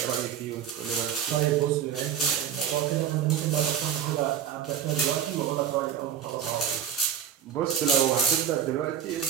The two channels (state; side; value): quieter; left; 9.0 dB